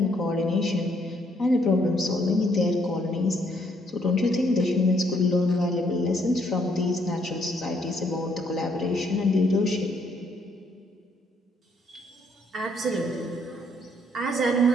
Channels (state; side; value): normal; both; correlation 0.70